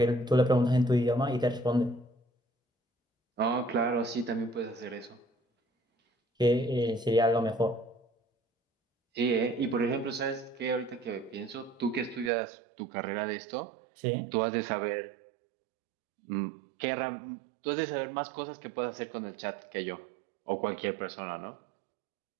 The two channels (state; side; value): drops out; left; at 12.3 s